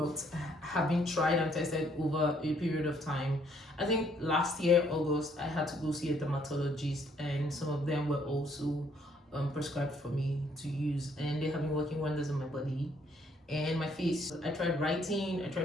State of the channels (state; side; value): normal; both; correlation 0.67